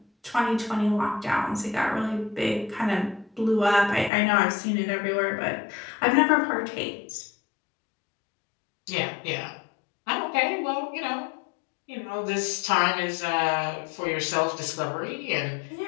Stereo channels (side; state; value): right; drops out; at 4.1 s